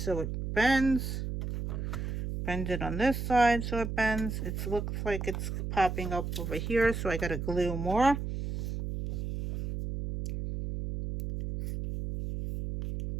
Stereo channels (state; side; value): noise; right; hum, 4 dB below the sound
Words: it bends. Bend it on this side so it bends. It looks like it's popping up over here, so I got to glue more.